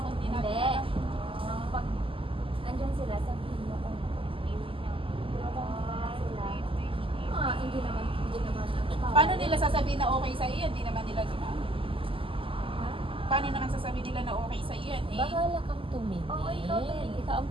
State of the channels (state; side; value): late; left; 0.26 ms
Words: di natin Hindi. alam. Nang pag andyan sila, sabihin mo kung pero kung wala sila, hindi naman. Paano nila sasabihin na okay sa iyo? Hindi naman nila ginagawa. Ha? Paano naman sasabihin nila na okay sa iyo? Eh, Bahala kang tumingin. Oo, ikaw din. ang